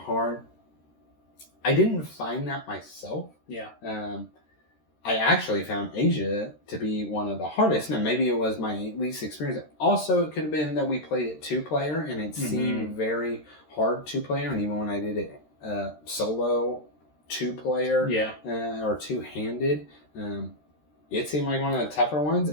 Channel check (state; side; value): late; right; 13 ms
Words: I didn't find that myself. Yeah. I actually found Asia to be one of the hardest. Now, maybe it was my least experience. Also, it could have been that we played it 2-player, and it seemed very hard 2-player. And even when I did it solo 2-player or two-handed, It seemed like one of the tougher ones.